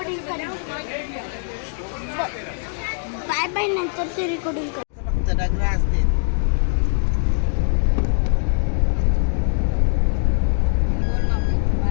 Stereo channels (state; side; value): silent; right; digital silence